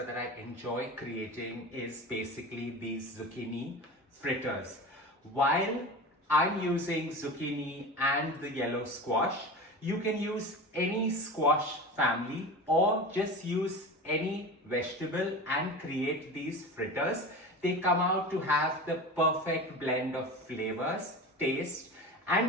that I enjoy creating is basically these zucchini fritters. While I'm using zucchini and the yellow squash, you can use any squash family or just use any vegetable and create these fritters. They come out to have the perfect blend of flavors, taste,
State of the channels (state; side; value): normal; both; correlation 0.30